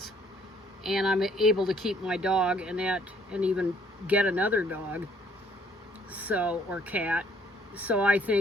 and I'm able to keep my dog and even get another dog, or cat. So I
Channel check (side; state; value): both; normal; correlation 0.62